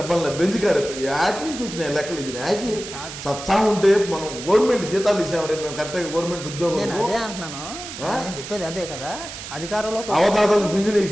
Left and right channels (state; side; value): noise; right; hiss, 10 dB below the sound